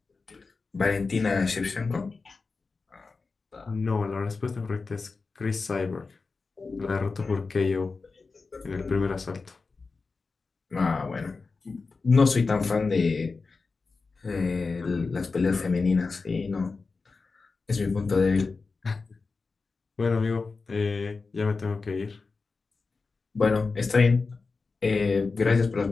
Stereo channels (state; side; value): quieter; right; 4.2 dB